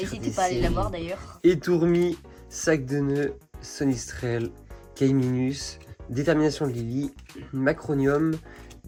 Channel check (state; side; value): identical; both; correlation 1.00